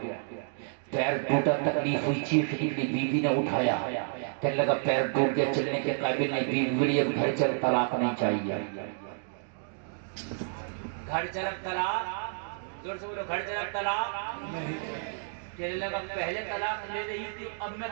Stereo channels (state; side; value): silent; left; digital silence